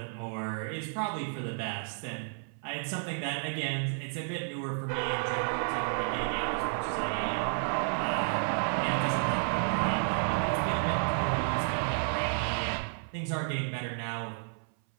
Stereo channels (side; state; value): left; silent; 57 dB below the other